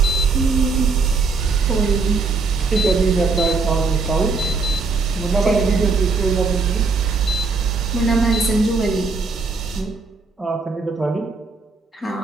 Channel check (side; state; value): left; quieter; 4.3 dB